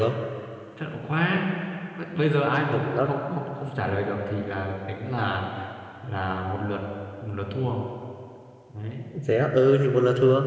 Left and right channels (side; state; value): both; identical; correlation 1.00